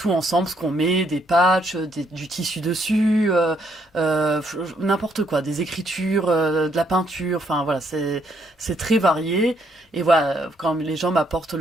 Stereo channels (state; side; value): normal; both; correlation 0.71